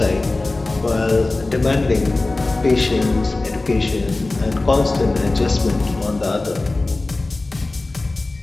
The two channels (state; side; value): quieter; right; 3.1 dB